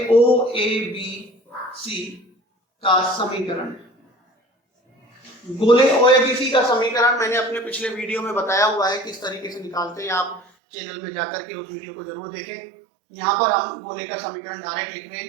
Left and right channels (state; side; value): drops out; left; at 10.4 s